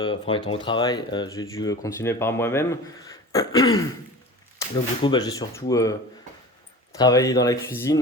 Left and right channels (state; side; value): normal; both; correlation 0.36